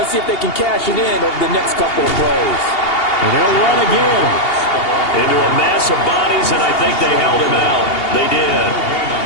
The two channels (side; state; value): right; late; 2.8 ms